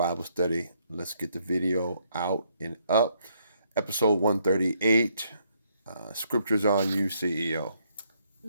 study. Let's get the video out and up. Episode 138. Scriptures on you, CEO.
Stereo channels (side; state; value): both; inverted; correlation -0.72